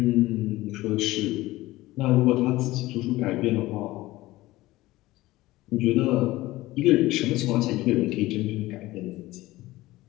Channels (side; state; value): right; quieter; 18.0 dB